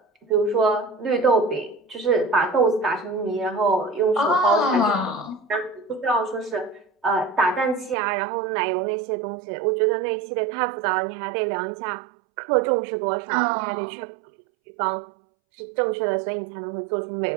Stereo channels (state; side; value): drops out; left; at 8.0 s